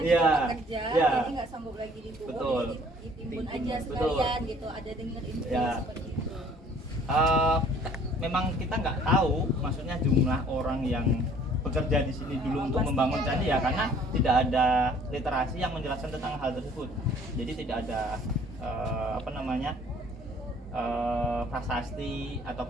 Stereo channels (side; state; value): both; normal; correlation 0.56